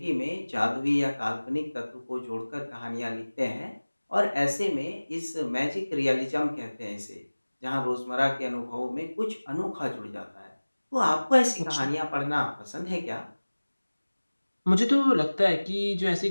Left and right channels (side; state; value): both; inverted; correlation -1.00